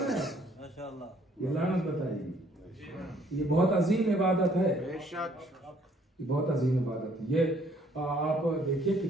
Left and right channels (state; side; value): normal; both; correlation 0.63